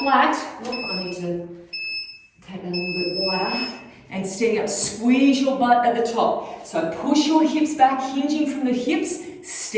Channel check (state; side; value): identical; both; correlation 1.00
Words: Oh, I need to take that a little bit wider. And standing up, squeeze your butt at the top. So push your hips back, hinging from the hips,